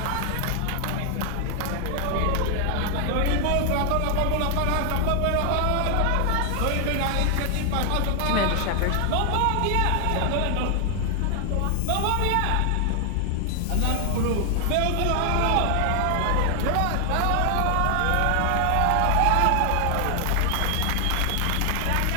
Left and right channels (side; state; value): both; different; correlation 0.00